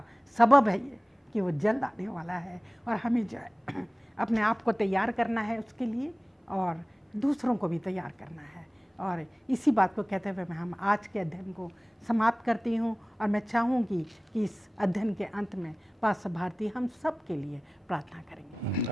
सबब है ये कि वो जल्द आने वाला है। और हमें जो है अपने आप को तैयार करना है उसके लिए और दूसरों को भी तैयार करना है। और इसी बात को कहते हुए मैं हम आज के अध्ययन को समाप्त करती हूँ। और मैं चाहूँगी कि इस अध्ययन के अंत में पास्टर भारती हम सब के लिए प्रार्थना करेंगे।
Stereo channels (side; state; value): both; normal; correlation 0.97